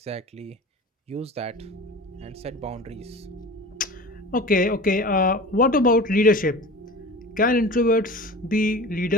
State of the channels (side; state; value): both; normal; correlation 0.36